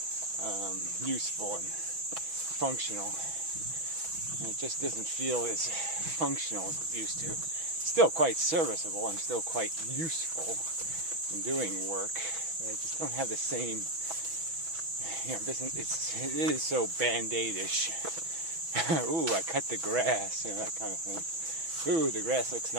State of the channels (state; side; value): late; left; 6.1 ms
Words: useful and functional. And it just doesn't feel as functional as it used to. Still quite serviceable, I'm still quite useful in doing work, but I just don't have the same, it is so band-aid-ish. Ooh, I cut the grass, that kind of thing. Ooh, the grass looks